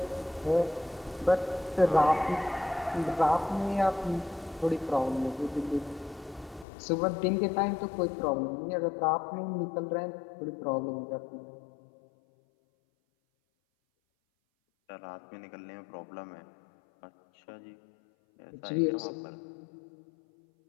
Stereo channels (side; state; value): right; drops out; at 6.7 s